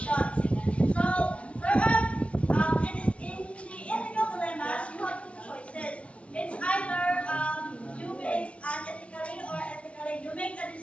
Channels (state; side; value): late; right; 0.062 ms